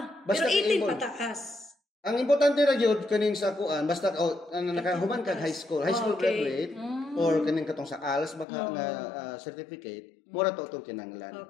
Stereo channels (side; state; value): right; drops out; at 8.5 s